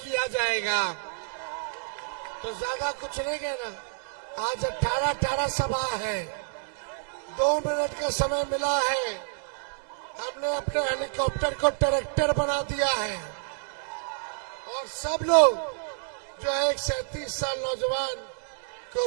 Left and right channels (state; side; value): silent; left; digital silence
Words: जाएगा। तो ज्यादा कुछ नहीं कहना। आज 18 सभा है, 2 मिनट का समय मिला है। हमने अपने हेलीकॉप्टर को ट्रैक्टर बना दिया है और सब लोग जो है 37 साल नौजवान को